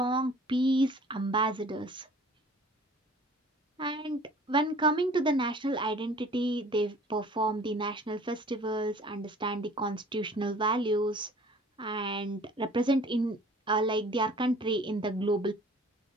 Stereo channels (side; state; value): both; normal; correlation 0.49